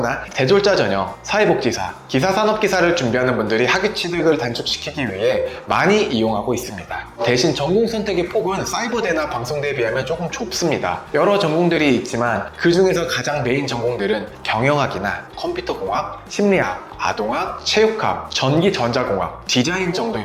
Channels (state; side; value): identical; both; correlation 1.00